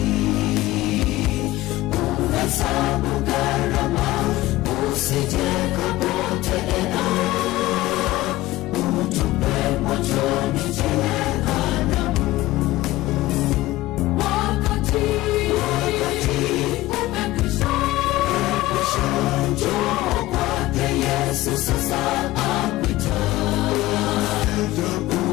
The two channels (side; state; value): right; quieter; 17.4 dB